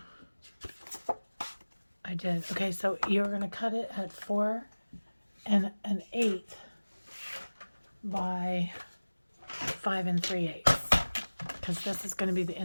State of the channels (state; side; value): inverted; both; correlation -1.00